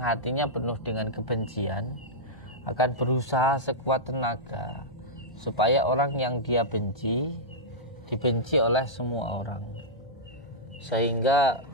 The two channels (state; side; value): late; right; 1.1 ms